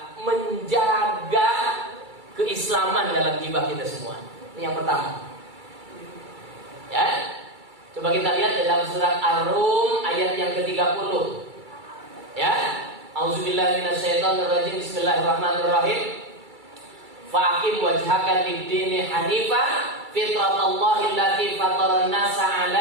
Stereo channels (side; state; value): left; late; 2.3 ms